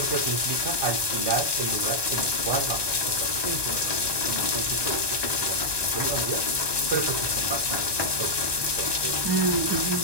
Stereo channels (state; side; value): late; left; 1.2 ms